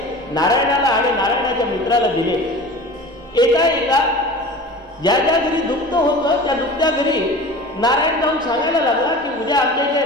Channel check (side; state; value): both; normal; correlation 0.37